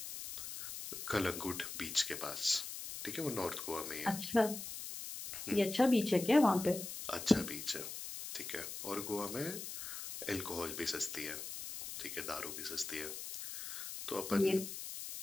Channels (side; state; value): left; noise; hiss, 8 dB below the sound